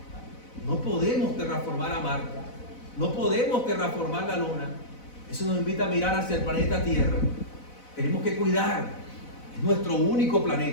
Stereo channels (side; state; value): right; late; 4.0 ms